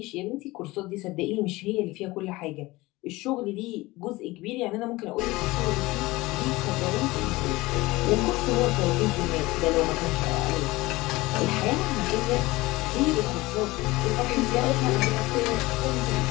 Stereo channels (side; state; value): right; quieter; 20.5 dB